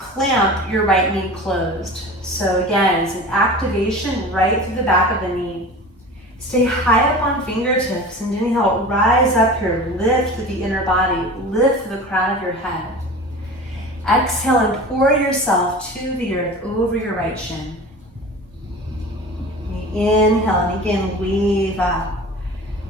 your right knee closed. So again, it's an activation right through the back of the knee. Stay high up on fingertips and inhale, rise up here, lift through the inner body, lift through the crown of your head. Exhale and pour yourself to the earth over your right shin. Inhale and again, wave up,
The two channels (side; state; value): both; normal; correlation 0.36